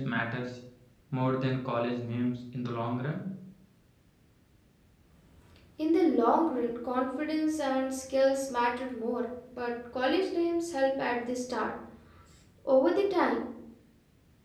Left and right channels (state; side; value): identical; both; correlation 1.00